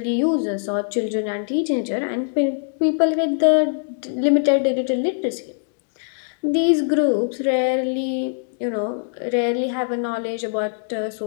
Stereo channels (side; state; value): right; silent; digital silence